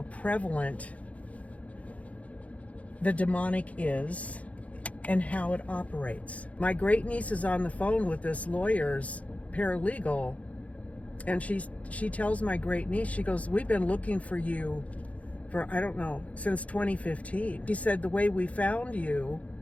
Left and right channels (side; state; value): right; late; 0.066 ms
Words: prevalent the demonic is and how it operates. My great niece is on the phone with this lawyer's paralegal, and she tells my great niece, she goes, we've been looking for you for, I don't know, since 2015. She said the way we found you